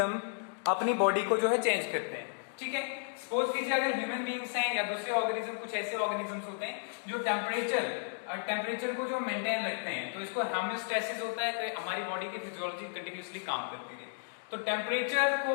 अपनी बॉडी को जो है चेंज करते हैं, ठीक है। सपोज कीजिए अगर ह्यूमन बींग्स हैं या दूसरे ऑर्गेनिज्म, कुछ ऐसे ऑर्गेनिजम्स होते हैं जो टेम्परेचर को जो मेंटेन रखते हैं, तो इसको होम्योस्टैसिस होता है, तो हमारी बॉडी की फिजियोलॉजी कंटिन्यूअसली काम करती है। तो टेम्परेचर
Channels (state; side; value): silent; right; digital silence